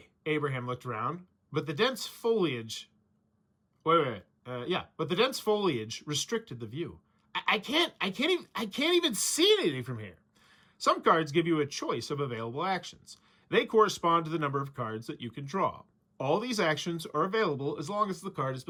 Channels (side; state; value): both; identical; correlation 1.00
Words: Abraham looked around, but the dense foliage... But the dense foliage restricted the view. I can't even see anything from here. Some cards give you a choice of available actions. They correspond to the number of cards that you can draw. All these actions are available as long as the card has